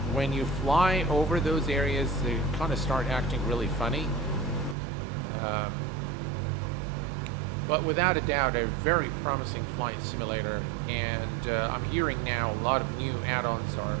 when you fly over those areas, they kind of start acting really funny. But without a doubt, a very promising flight simulator, and I'm hearing now a lot of new add-ons are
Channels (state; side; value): drops out; left; at 4.8 s